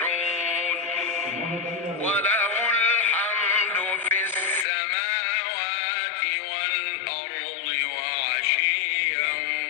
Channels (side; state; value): right; drops out; at 4.7 s